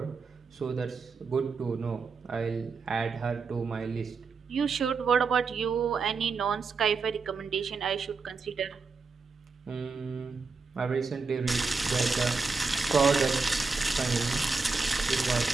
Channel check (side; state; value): left; quieter; 4.6 dB